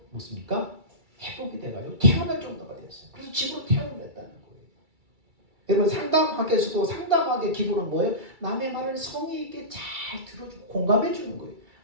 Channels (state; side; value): late; left; 2.3 ms